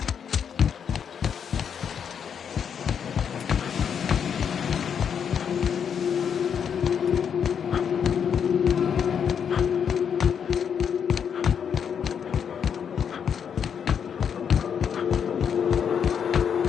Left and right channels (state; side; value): quieter; right; 7.6 dB